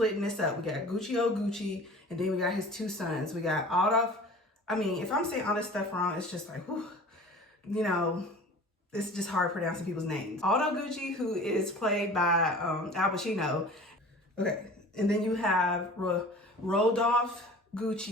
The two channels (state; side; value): normal; both; correlation 0.42